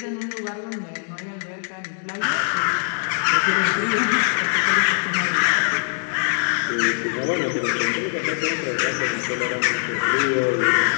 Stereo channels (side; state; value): right; silent; 56 dB below the other